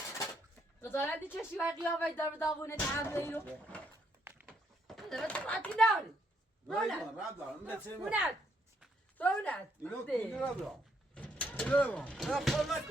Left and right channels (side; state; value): both; normal; correlation 0.73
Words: بذارندی چشی و قیافه در داغونه تحمله اینو بذاره تو راتی ناری رونت